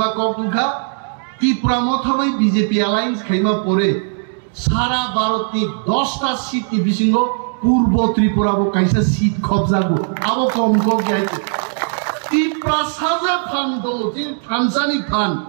को उठा त्रिपुरा मथाबै बीजेपी अलायंस खाइमा परे सारा भारत की 10टा सीट की बिसिंगो पूर्व त्रिपुरा को कैसे सीट कब्जा को अब कम को गया त्रिपुरा साजा फान दो जिन थानसानी फान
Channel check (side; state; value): left; silent; 57 dB below the other